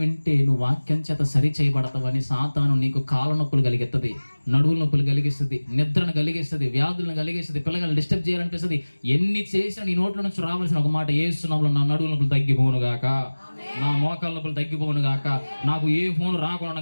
వింటే నువ్వు వాక్యం చేత సరి చేయబడతావని సాతాను నీకు కాళ్ళ నొప్పులు కలిగిస్తుంది, నడువుల నొప్పులు కలిగిస్తుంది, నిద్రను కలిగిస్తుంది, వ్యాధులను కలిగిస్తుంది, పిల్లలను డిస్టర్బ్ చేయాలనిపిస్తుంది. ఎన్ని చేసినా నీ నోట్ల నుంచి రావాల్సిన ఒక మాట, యేసునామములో నా నడువుల నొప్పులు తగ్గిపోను గాక, నా మోకాళ్ళ నొప్పులు తగ్గిపోను గాక, నాకు ఏ ఫోన్ రాకుండా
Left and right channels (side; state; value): both; inverted; correlation -1.00